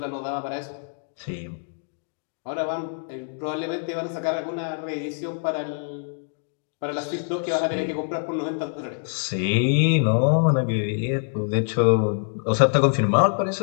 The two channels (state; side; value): silent; right; digital silence